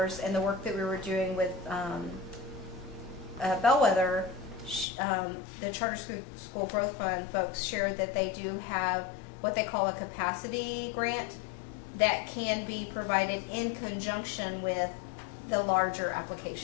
and the work that we were doing with Bellwether, the Charter School Growth Fund folks shared that they do have what they call a capacity grant that can be provided in conjunction with the larger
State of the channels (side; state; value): right; drops out; at 4.9 s